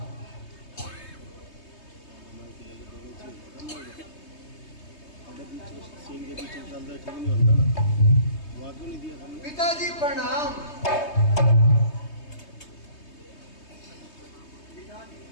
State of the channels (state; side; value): late; right; 3.2 ms